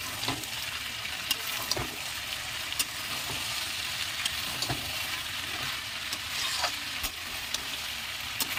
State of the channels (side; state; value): both; identical; correlation 1.00